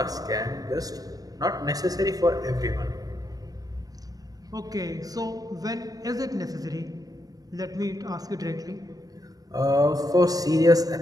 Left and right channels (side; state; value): left; late; 0.18 ms